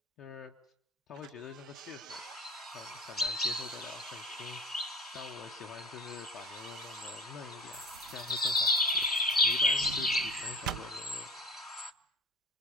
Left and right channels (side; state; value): both; normal; correlation 0.35